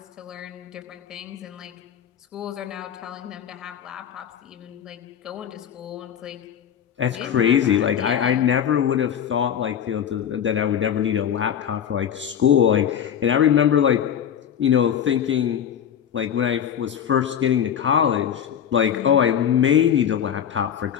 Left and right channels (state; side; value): quieter; right; 9.0 dB